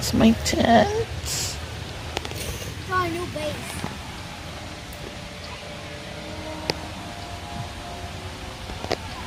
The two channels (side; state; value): both; identical; correlation 1.00